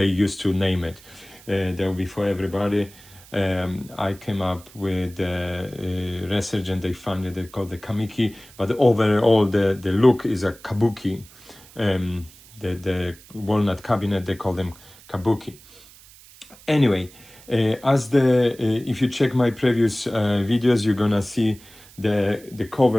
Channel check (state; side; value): noise; right; hiss, 23 dB below the sound